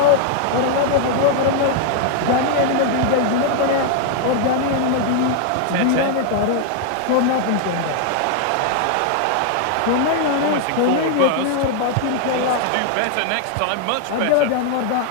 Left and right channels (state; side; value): different; both; correlation 0.00